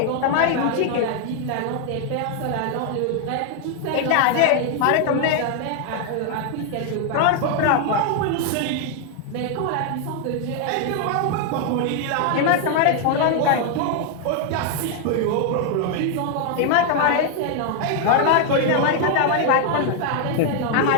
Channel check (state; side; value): different; both; correlation 0.00